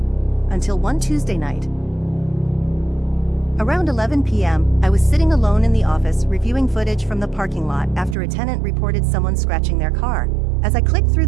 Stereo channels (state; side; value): drops out; left; at 8.2 s